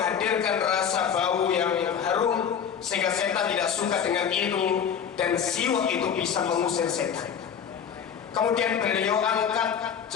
rasa bau yang harum sehingga setan tidak suka dengan itu, dan siwak itu bisa mengusir setan. Kemudian beliau angkat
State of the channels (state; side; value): quieter; right; 7.8 dB